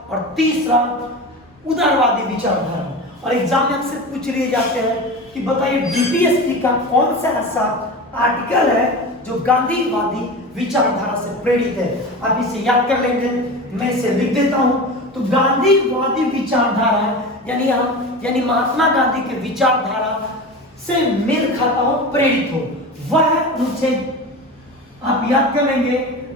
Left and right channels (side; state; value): both; normal; correlation 0.29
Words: और तीसरा उदारवादी विचारधारा। और एग्जाम में अक्सर पूछ लिए जाते हैं कि बताइए डीपीएसपी का कौन सा ऐसा आर्टिकल है जो गांधीवादी विचारधारा से प्रेरित है। आप इसे याद कर लेंगे, मैं इसे लिख देता हूं। तो गांधीवादी विचारधारा यानी महात्मा गांधी के विचारधारा से मेल खाता हो, प्रेरित हो, वह अनुच्छेद आप याद कर लेंगे,